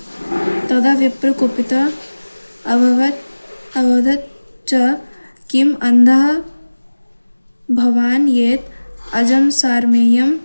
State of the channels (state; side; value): inverted; both; correlation -1.00